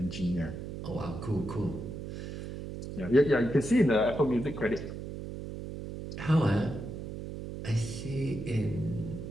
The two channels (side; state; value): right; noise; hum, 8 dB below the sound